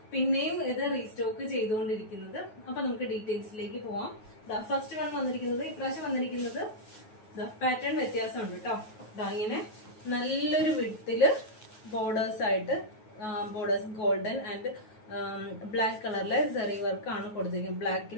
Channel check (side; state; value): right; late; 9.3 ms